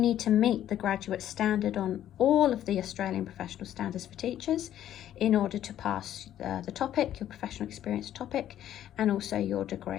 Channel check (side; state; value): right; quieter; 11.5 dB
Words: to meet the graduate standard on all of the Australian Professional Standards for Teachers in order to pass the topic, your professional experience topic, and also your